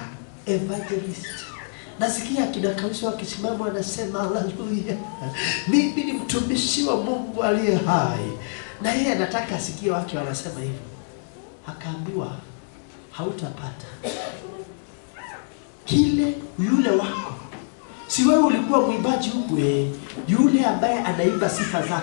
evangelist. Nasikia kina Kausi wakisimama wanasema haleluya. Mimi ni mtumishi wa Mungu aliye hai. Na yeye anataka asikie watu wanasema hivyo. Akaambiwa hautapata. Kile yule wako. Si wewe ulikuwa mwimbaji huko, yule ambaye anaimba sifa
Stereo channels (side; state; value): right; silent; digital silence